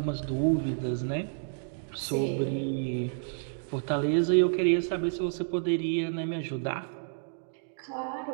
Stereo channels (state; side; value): silent; left; digital silence